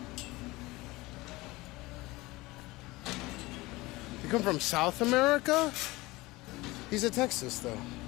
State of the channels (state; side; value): quieter; right; 20.9 dB